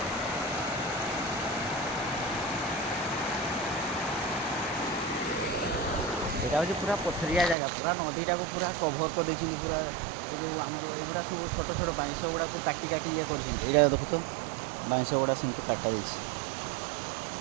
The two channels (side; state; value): left; drops out; at 7.6 s